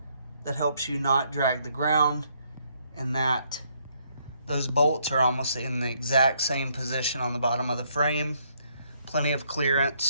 that helps you not drag the ground, and those bolts are almost in the exact same position on the bottom of the frame. Plenty of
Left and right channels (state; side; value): inverted; both; correlation -0.71